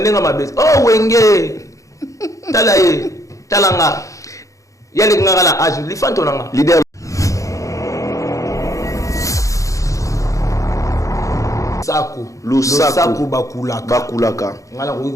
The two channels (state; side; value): late; right; 0.16 ms